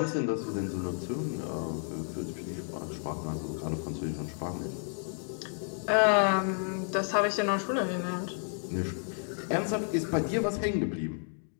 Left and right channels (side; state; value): right; silent; 57 dB below the other